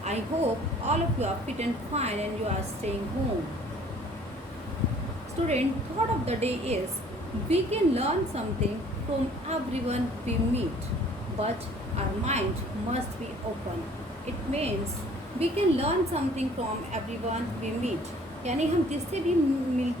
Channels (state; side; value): normal; both; correlation 0.54